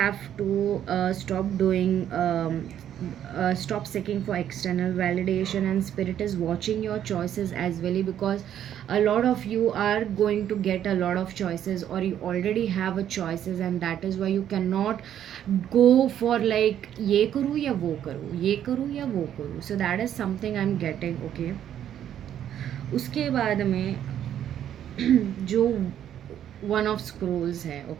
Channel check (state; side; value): quieter; left; 10.4 dB